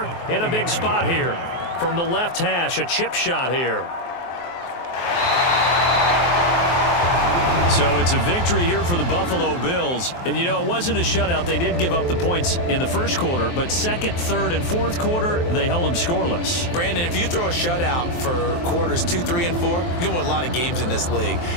in a big spot here. From the left hash, a chip shot here. So it's a victory here for the Buffalo Bills. And, you know, it wasn't a shutout. They did give up the points in the first quarter, but 2nd, 3rd, and 4th quarter, they held them scoreless. Brandon, if you throw a shutout for quarters 2, 3, and 4, you're going to win a lot of games in this league.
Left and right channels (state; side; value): late; right; 23 ms